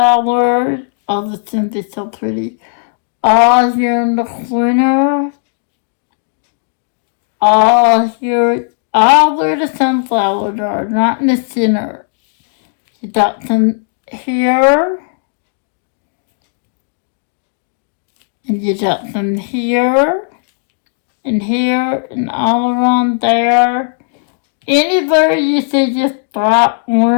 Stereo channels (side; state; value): right; silent; digital silence